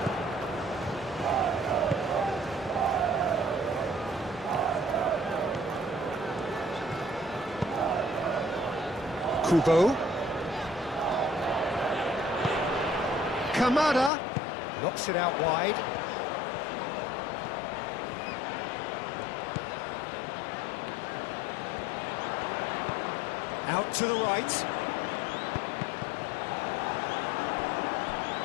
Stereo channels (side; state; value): right; drops out; at 14.1 s